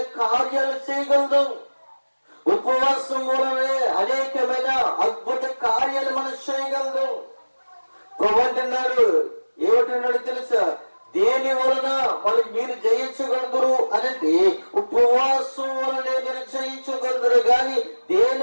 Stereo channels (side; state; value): both; inverted; correlation -1.00